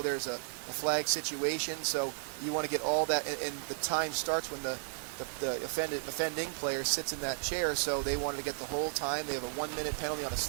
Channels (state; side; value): silent; left; digital silence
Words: there's a flag situation. So you want to get all that, and the time starts when the offending player sits in that chair. So they wanted to get the whole time. They have a 1 minute penalty on a